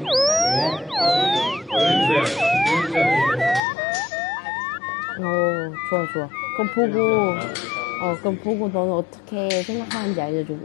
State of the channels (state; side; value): drops out; right; at 3.6 s